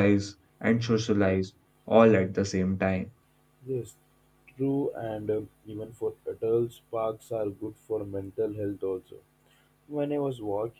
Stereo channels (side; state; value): both; identical; correlation 1.00